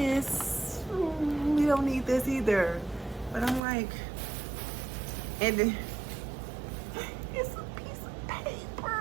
We don't need this either. But I'm like, and then it's a piece of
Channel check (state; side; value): drops out; left; at 3.6 s